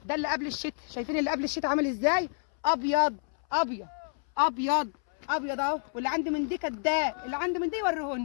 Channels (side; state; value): right; silent; 59 dB below the other